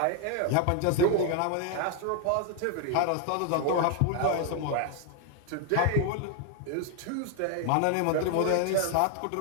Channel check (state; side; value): different; both; correlation 0.01